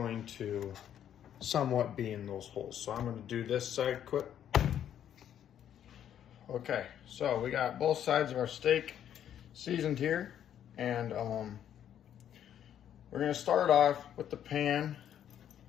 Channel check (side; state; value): right; quieter; 10.0 dB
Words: to somewhat be in those holes. So I'm going to do this side quick. Okay, so we got both sides of our steak seasoned here, and we're going to start off with the pan